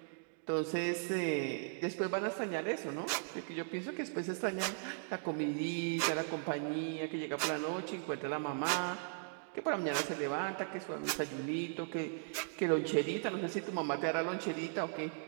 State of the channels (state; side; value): silent; left; digital silence